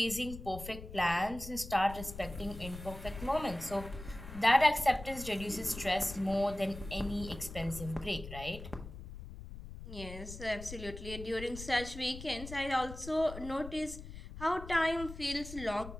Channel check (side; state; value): left; noise; rumble, 12 dB below the sound